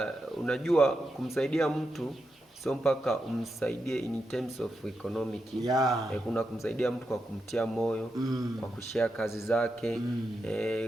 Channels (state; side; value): normal; both; correlation 0.86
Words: unajua kumsaidia mtu sio mpaka umsaidie in terms of economic. Kuna kumsaidia mtu kwa kumtia moyo, kwa kushare kazi zake,